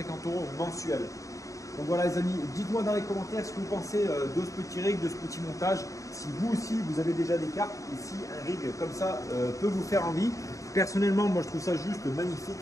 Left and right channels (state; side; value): late; right; 0.16 ms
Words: € mensuel. Donc voilà les amis, dites-moi dans les commentaires ce que vous pensez de ce petit rig, de ce petit montage. Si vous aussi, vous avez déjà des cartes et si un rig comme ça peut vous faire envie. Personnellement, moi je trouve ça juste magnifique